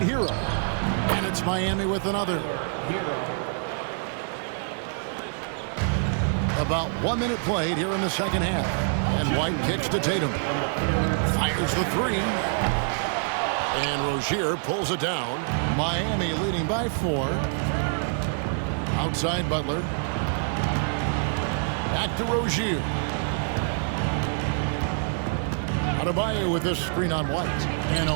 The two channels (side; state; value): left; silent; 60 dB below the other